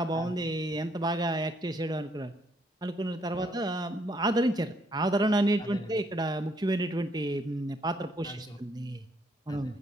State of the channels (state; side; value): normal; both; correlation 0.70